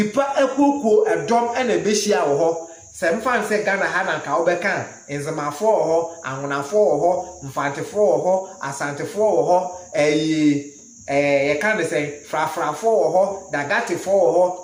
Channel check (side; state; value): both; identical; correlation 1.00